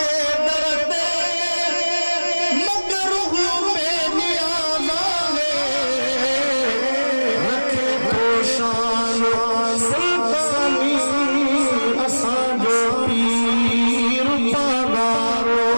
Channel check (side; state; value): both; inverted; correlation -1.00